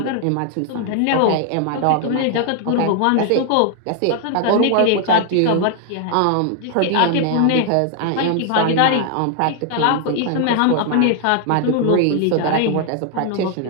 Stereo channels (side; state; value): both; different; correlation 0.00